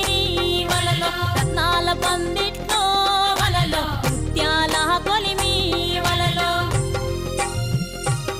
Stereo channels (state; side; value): identical; both; correlation 1.00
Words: వలలో రత్నాల పందిట్లో వలలో ముత్యాల కొలిమి వలలో